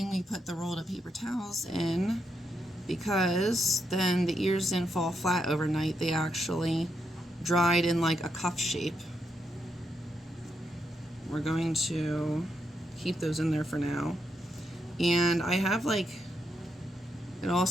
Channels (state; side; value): normal; both; correlation 0.81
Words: rolled up paper towels in, because then the ears didn't fall flat overnight. They actually dried in like a cuff shape. We're going to keep those in there for now. And I have like, it